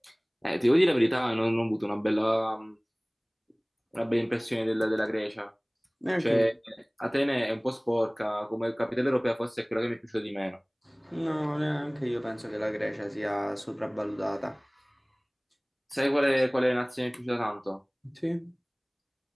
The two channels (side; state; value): both; identical; correlation 1.00